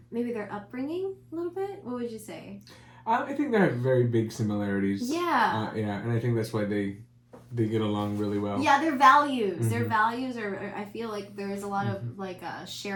maybe their upbringing a little bit. What would you say? I think they have very big similarities. Yeah. Yeah, and I think that's why they get along really well. Yeah, their values. Their values are. I feel like there's a lot of like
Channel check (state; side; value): identical; both; correlation 1.00